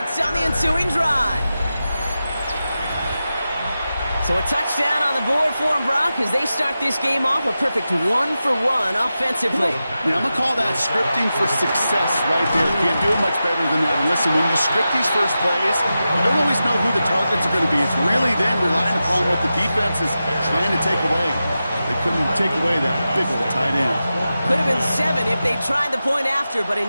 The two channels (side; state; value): both; inverted; correlation -0.92